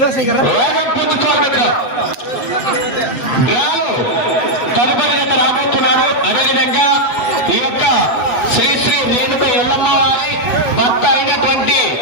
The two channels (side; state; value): right; late; 8.2 ms